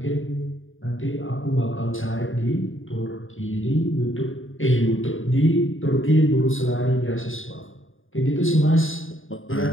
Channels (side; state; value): right; late; 0.58 ms